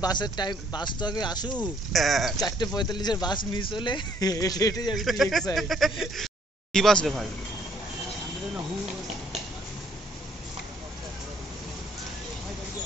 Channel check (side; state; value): both; normal; correlation 0.65